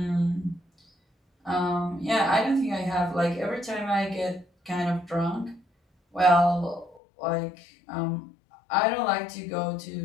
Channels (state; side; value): drops out; right; at 7.0 s